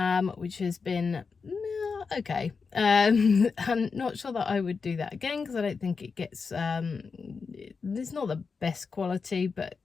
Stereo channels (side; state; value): right; quieter; 5.1 dB